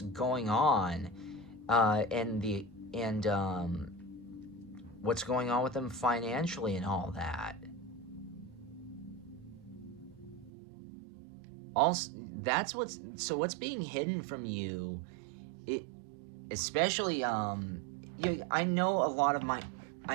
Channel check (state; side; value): drops out; left; at 10.5 s